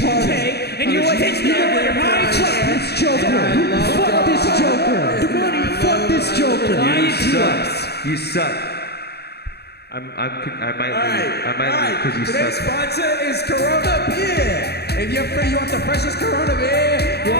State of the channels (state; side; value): late; right; 0.47 ms